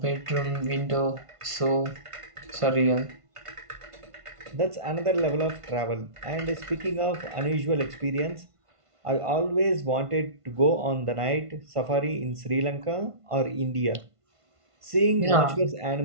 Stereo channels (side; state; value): left; late; 1.5 ms